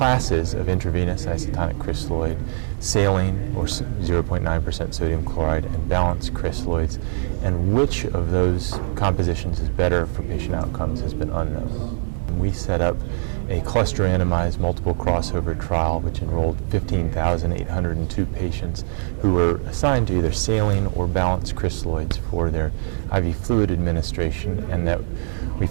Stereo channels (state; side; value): silent; left; 64 dB below the other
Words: of intravenous isotonic crystalloid: saline, or 0.9% sodium chloride, and balanced crystalloids. And which of those compositions is better for patient outcomes has been unknown. We set up a cluster randomized multiple crossover trial which enrolled 15,802 patients who were assigned to either saline or balanced crystalloids for their IV fluid administration, and that we